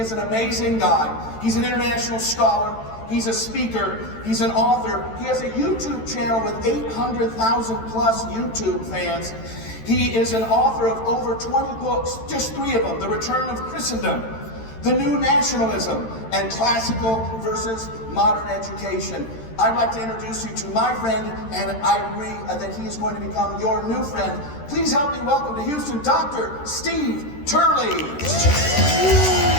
an amazing guy. He's an international scholar. He's a speaker. He's an author. He has a YouTube channel with 800,000 plus YouTube fans. He is an author of over 20 books, just 3 of them: The Return of Christendom, The New Nationalism, and Classical versus Modern Education. I'd like to introduce you to my friend, and I agree that he is going to become your new friend. Please help me welcome to Houston, Dr. Steve Turley.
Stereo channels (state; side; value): late; right; 13 ms